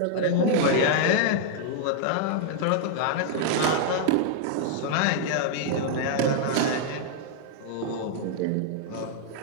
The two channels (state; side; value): different; both; correlation -0.01